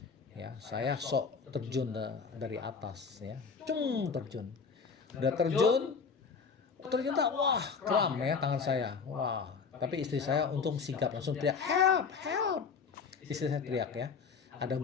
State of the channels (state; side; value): quieter; right; 5.5 dB